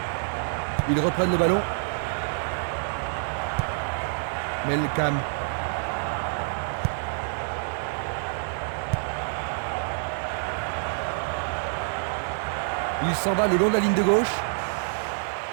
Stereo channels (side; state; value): left; silent; digital silence